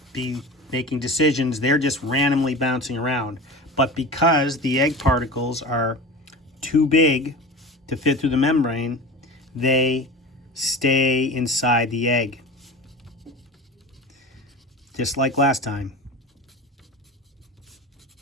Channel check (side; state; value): both; normal; correlation 0.32